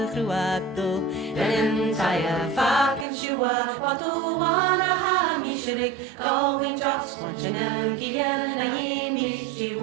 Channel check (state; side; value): drops out; left; at 3.1 s